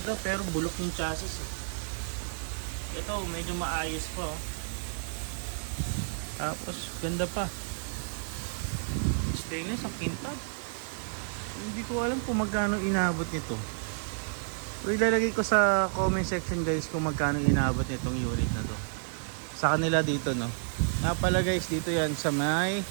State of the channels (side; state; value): left; silent; digital silence